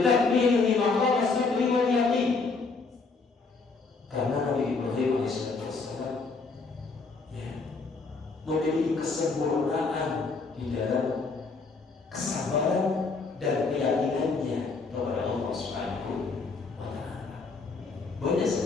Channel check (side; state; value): right; quieter; 4.2 dB